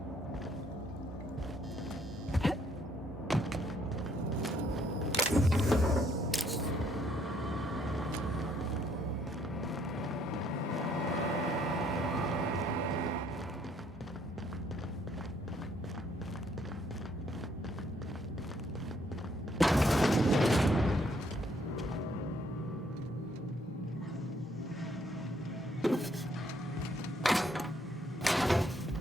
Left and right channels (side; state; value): both; normal; correlation 0.68